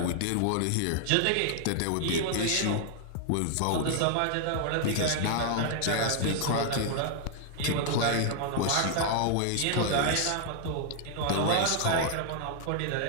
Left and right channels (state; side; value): different; both; correlation 0.00